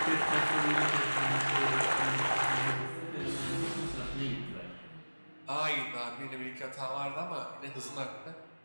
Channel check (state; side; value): inverted; both; correlation -1.00